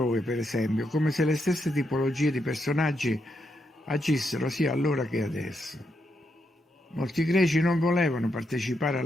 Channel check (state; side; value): normal; both; correlation 0.81